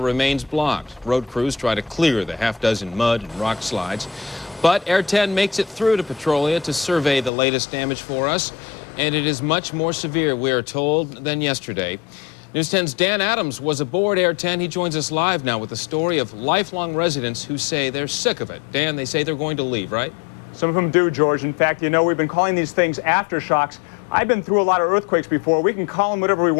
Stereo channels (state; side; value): drops out; right; at 7.3 s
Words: remains blocked. Road crews try to clear the half-dozen mud and rock slides. But Air 10 makes it through to Petrolia to survey the latest damage for us, and it is much more severe, we are told, than yesterday. News 10's Dan Adams was aboard Air 10. He joins us live now with the story of lifelong residents who say they're sick of it. Dan, they say they're going to leave, right? Some of them do, George. In fact, you know, we've been calling these things aftershocks. I've been through a lot of earthquakes before. We can call them whatever we